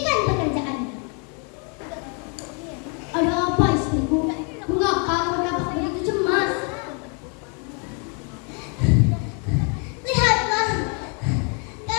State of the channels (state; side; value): quieter; right; 37.2 dB